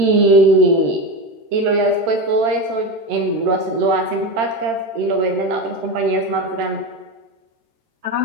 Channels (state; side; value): late; left; 13 ms